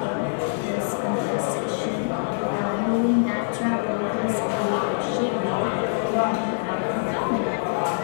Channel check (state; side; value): silent; right; digital silence